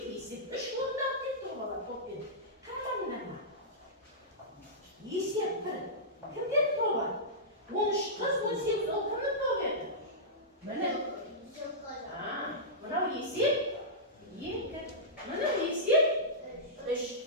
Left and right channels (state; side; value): normal; both; correlation -0.15